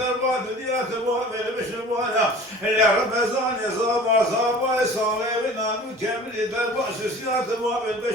ديات باب البشر ولا لرمزان صابا صالي ونانو كامل دربات سيات باب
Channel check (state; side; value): normal; both; correlation 0.43